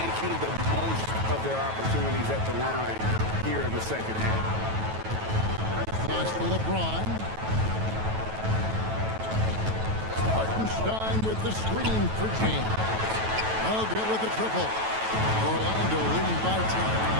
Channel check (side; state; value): left; late; 9.2 ms